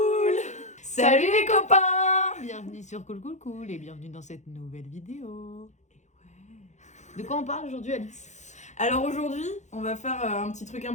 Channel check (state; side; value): late; right; 0.34 ms